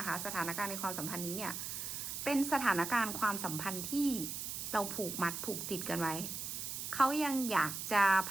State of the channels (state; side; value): noise; right; hiss, 5 dB below the sound